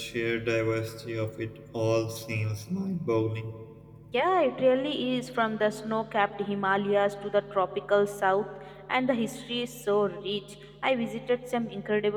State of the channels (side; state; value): both; identical; correlation 1.00